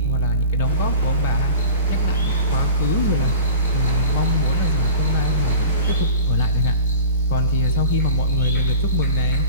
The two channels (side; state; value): both; inverted; correlation -0.38